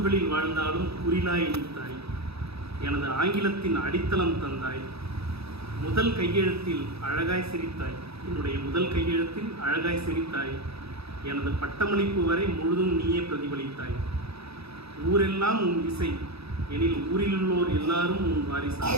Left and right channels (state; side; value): late; left; 0.78 ms